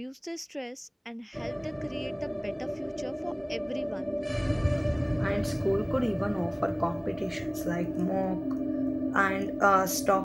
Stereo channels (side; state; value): both; identical; correlation 1.00